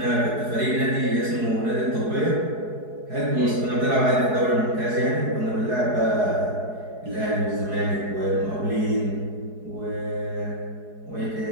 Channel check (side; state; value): left; late; 4.7 ms